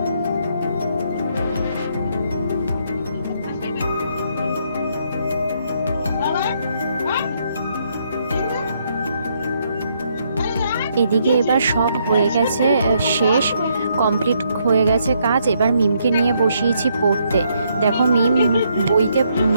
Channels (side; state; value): both; inverted; correlation -0.73